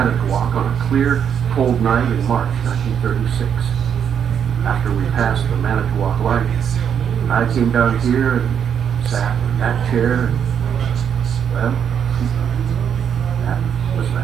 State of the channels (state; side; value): quieter; left; 8.1 dB